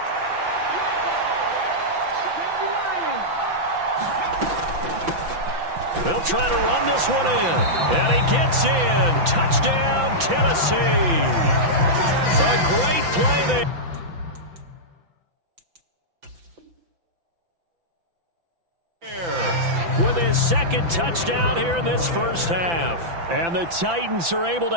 They'll try to run this one in. And he gets in. Touchdown, Tennessee. A great play there. With his second touchdown here in this first half. And the Titans are able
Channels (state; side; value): late; left; 5.9 ms